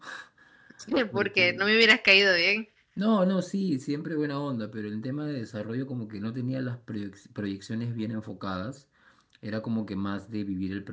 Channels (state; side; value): identical; both; correlation 1.00